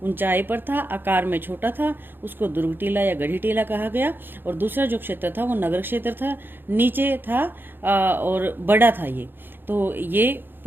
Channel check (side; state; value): left; late; 0.098 ms